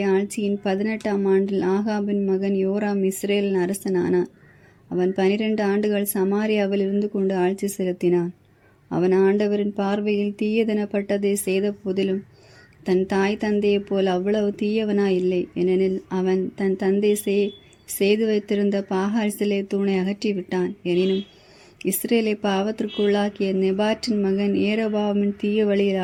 ஆட்சியின் 18ஆம் ஆண்டில் ஆகாபின் மகன் யோராம் இஸ்ரேலின் அரசனானான். அவன் 12 ஆண்டுகள் சமாரியாவில் இருந்து கொண்டு ஆட்சி செலுத்தினான். அவன் ஆண்டவரின் பார்வையில் தீயதெனப்பட்டதை செய்த போதிலும் தன் தாய் தந்தையைப் போல் அவ்வளவு தீயவனாயில்லை. ஏனெனில் அவன் தன் தந்தை செய்து வைத்திருந்த பாகால் சிலை தூணை அகற்றிவிட்டான். எனினும் இஸ்ரேலை பாவத்திற்குள்ளாக்கிய நெபாற்றின் மகன் ஏரோபாமின் தீய வழியில்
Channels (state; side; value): identical; both; correlation 1.00